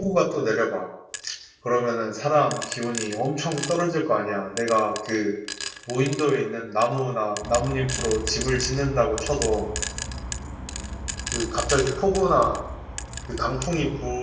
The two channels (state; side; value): identical; both; correlation 1.00